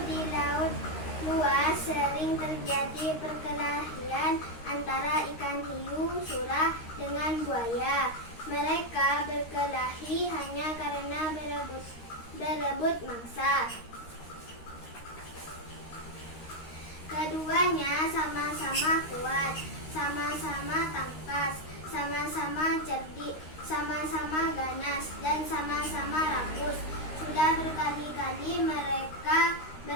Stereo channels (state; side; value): late; right; 13 ms